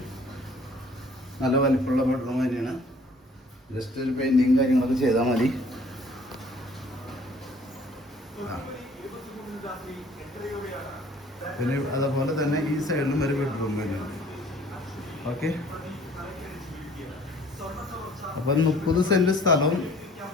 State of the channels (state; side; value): normal; both; correlation 0.54